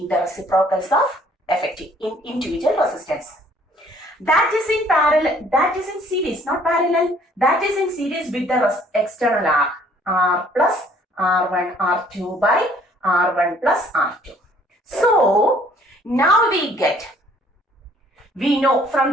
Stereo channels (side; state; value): both; normal; correlation 0.59